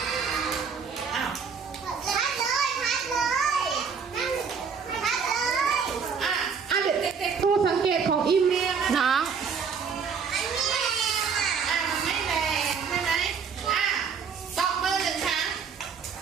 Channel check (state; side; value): quieter; left; 6.1 dB